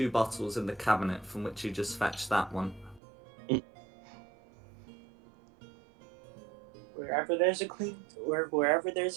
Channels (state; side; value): drops out; left; at 3.0 s